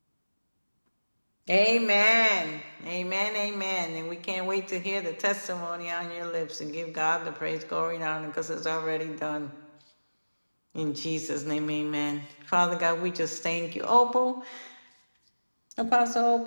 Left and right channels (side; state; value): both; inverted; correlation -1.00